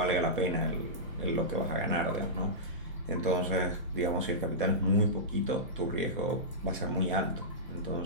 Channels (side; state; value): both; normal; correlation -0.15